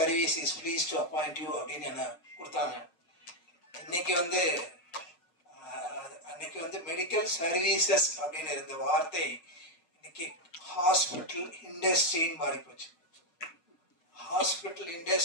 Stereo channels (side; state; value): right; late; 6.5 ms